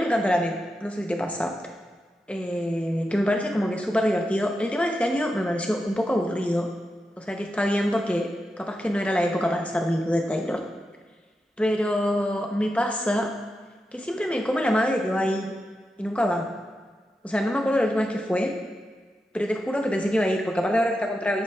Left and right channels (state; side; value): normal; both; correlation 0.88